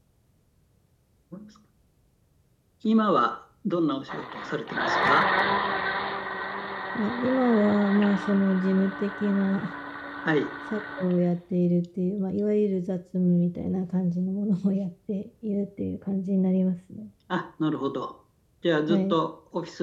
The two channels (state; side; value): identical; both; correlation 1.00